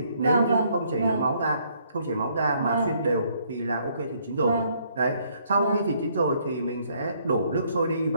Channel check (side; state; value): both; inverted; correlation -0.67